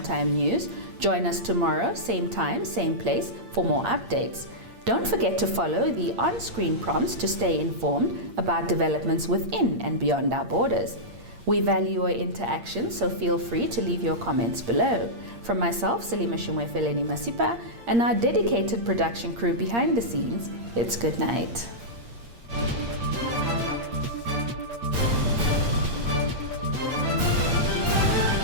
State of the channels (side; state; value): left; late; 8.6 ms